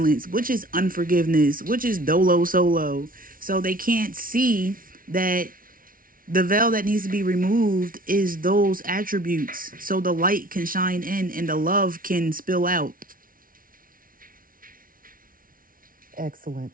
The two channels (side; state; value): left; late; 0.41 ms